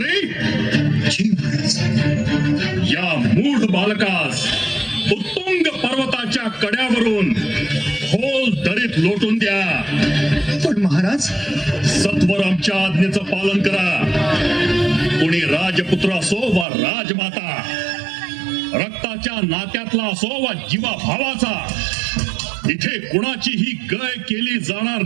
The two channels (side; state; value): left; drops out; at 16.7 s